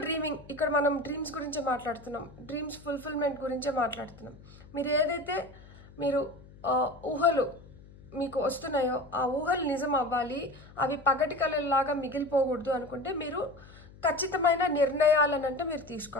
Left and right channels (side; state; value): left; noise; hum, 21 dB below the sound